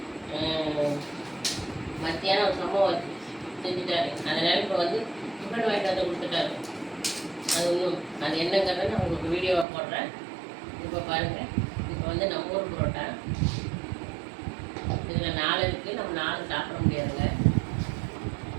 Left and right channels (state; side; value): drops out; left; at 9.7 s